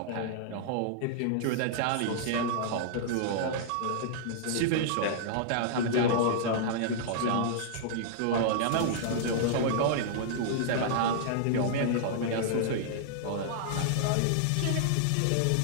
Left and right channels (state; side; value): different; both; correlation -0.01